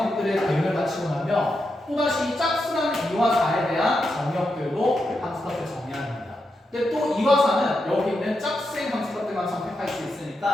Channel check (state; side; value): normal; both; correlation 0.86